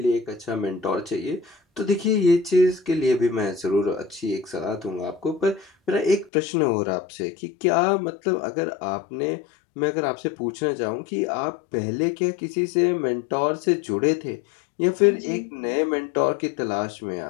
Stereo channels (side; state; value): right; drops out; at 6.3 s